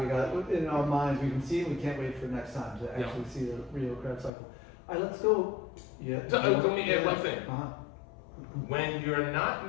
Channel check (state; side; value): drops out; right; at 4.3 s